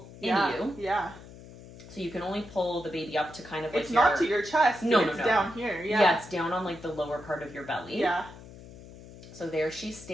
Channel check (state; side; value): noise; left; hum, 17 dB below the sound